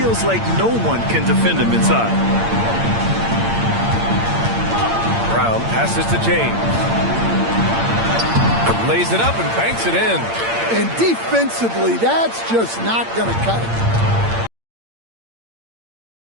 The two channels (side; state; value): left; late; 8.8 ms